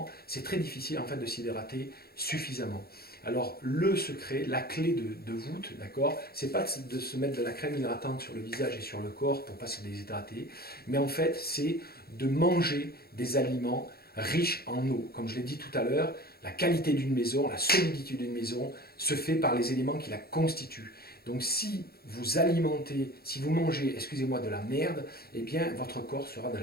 C'est très difficile en fait de s'hydrater suffisamment. Alors le secret, la clé de voûte, d'accord, c'est pas de se mettre de la crème hydratante sur le visage et sur le corps pour pas se déshydrater, mais en fait c'est de manger des aliments riches en eau. Comme je l'ai dit tout à l'heure, la qualité d'une maison, la solidité d'une maison se fait par les éléments qui la constituent. Donc si vous alimentez, si vous mangez, excusez-moi, de la merde, eh bien votre corps sera de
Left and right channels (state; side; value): late; right; 0.45 ms